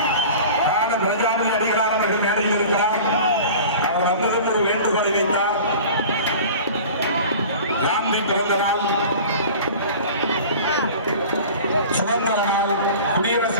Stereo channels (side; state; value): both; inverted; correlation -0.40